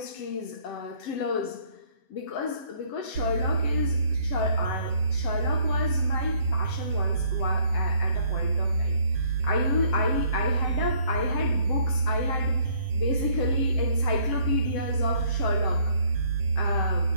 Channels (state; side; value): late; right; 7.6 ms